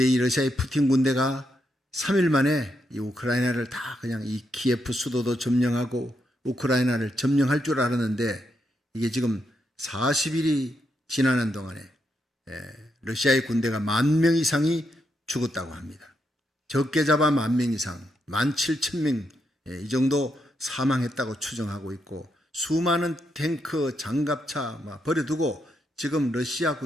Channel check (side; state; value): both; normal; correlation 0.81